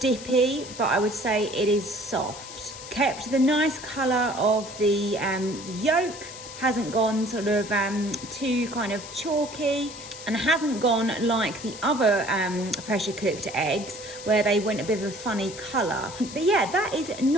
but I would say it is soft. Kept the nice colour of the yolk, hasn't gone sort of too kind of chalky, and hasn't gone like the other pressure cooked eggs where they went a bit of a funny colour. But yeah, that is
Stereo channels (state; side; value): noise; left; hiss, 13 dB below the sound